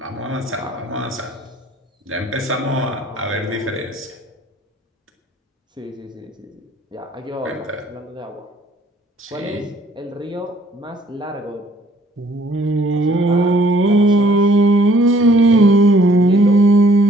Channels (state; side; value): normal; both; correlation 0.60